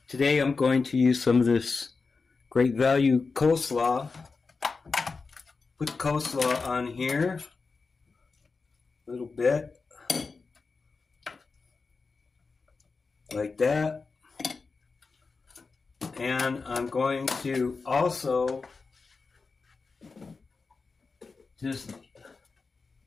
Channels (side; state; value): right; quieter; 4.4 dB